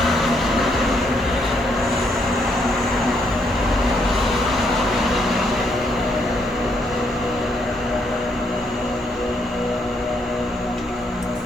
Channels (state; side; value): normal; both; correlation 0.74